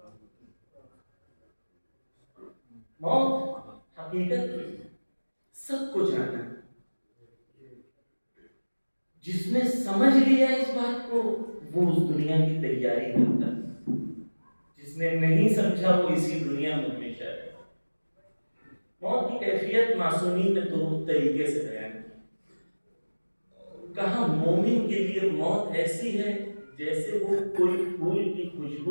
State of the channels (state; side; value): inverted; both; correlation -1.00